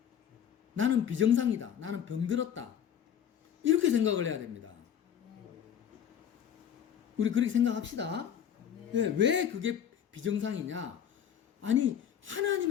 나는 비정상이다. 나는 병들었다. 이렇게 생각을 해야 됩니다. 우리 그렇게 생각합시다. 왜 그게 비정상이냐? 아니,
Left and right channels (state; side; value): quieter; right; 9.0 dB